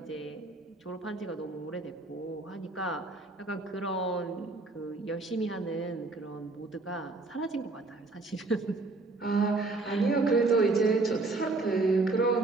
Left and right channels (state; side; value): quieter; left; 3.3 dB